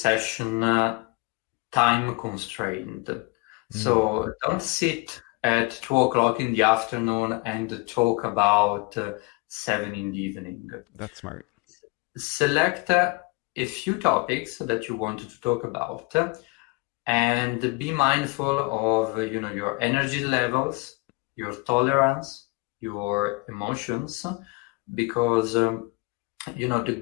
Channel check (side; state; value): right; quieter; 27.9 dB